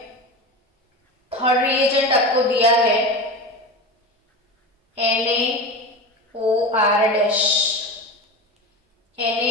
थर्ड रिएजेंट आपको दिया है NaOR-,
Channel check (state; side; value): normal; both; correlation 0.26